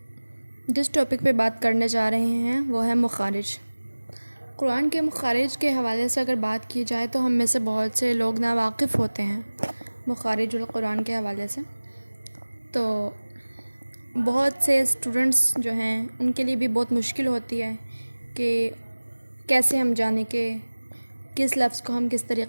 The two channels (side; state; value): both; inverted; correlation -1.00